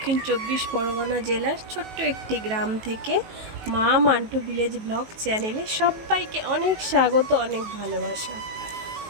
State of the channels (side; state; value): left; late; 19 ms